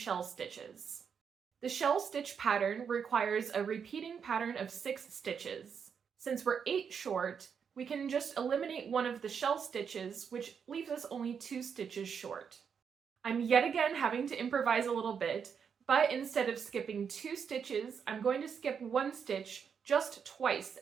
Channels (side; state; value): left; quieter; 6.9 dB